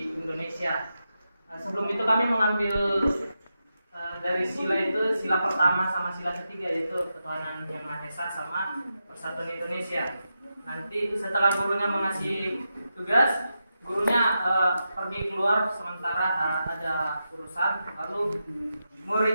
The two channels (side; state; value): both; inverted; correlation -0.88